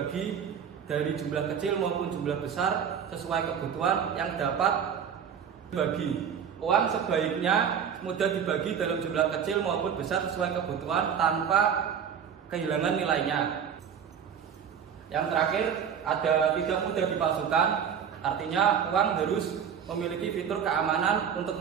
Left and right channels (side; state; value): left; quieter; 7.8 dB